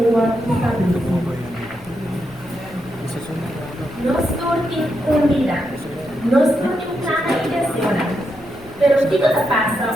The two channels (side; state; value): left; noise; rumble, 23 dB below the sound